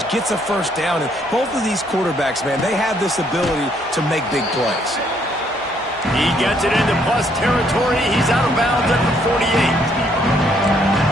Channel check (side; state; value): both; normal; correlation 0.68